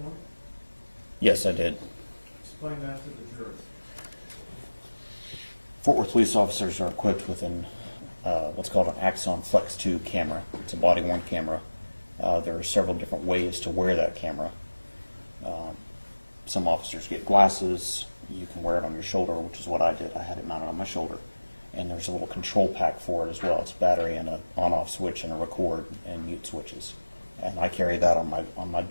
point? Yes, I did. Explain that to the jury. Fort Worth police officers are equipped with what's called an Axon Flex 2 camera. It's a body-worn camera. There are several different ways to wear that camera. Some officers get glasses. You can wear it on your shoulder, which is what I did. I had it mounted on my shoulder. And there's a little control pack for it as well. It's a battery and an on-off switch and a record and mute switches. And I carry that on my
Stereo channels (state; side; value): inverted; both; correlation -1.00